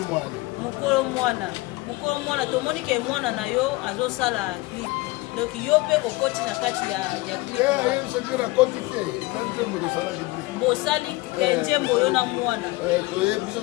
Mokolo mwana. Mokolo mwana tomoni ke mwana na yo azosala clip. Donc yo pe okoti na kati ya clip. Bosali kenjembo yo na mwana. Toye biso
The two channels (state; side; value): quieter; right; 21.2 dB